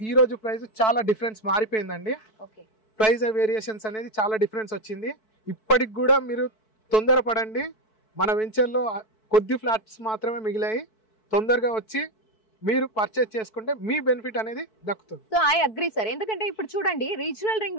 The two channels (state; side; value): late; right; 4.6 ms